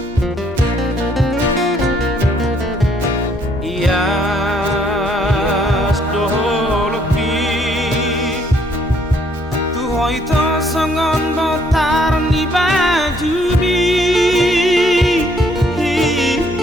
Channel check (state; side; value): normal; both; correlation 0.67